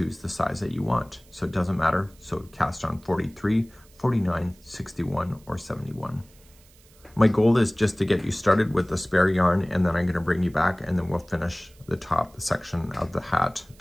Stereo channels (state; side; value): noise; right; hiss, 28 dB below the sound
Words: the size that you want. So it doesn't matter. So cast on 43, 49, 61, or 71. My goal is just to get you started with the spare yarn, and then I'm gonna bring you back, and then we'll finish the top section of the hat